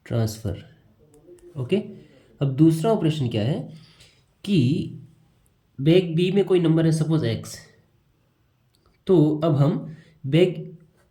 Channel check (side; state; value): both; identical; correlation 1.00